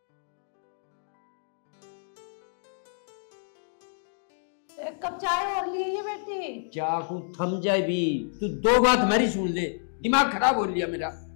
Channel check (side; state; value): right; silent; digital silence